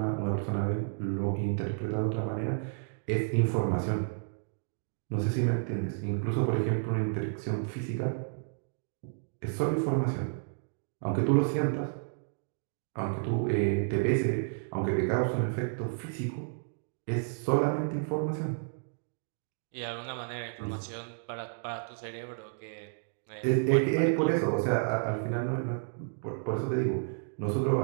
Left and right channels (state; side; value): silent; left; digital silence